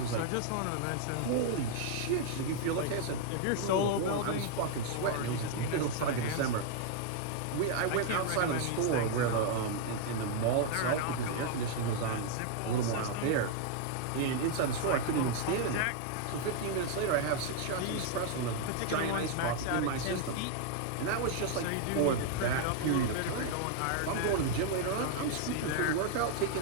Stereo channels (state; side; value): different; both; correlation 0.00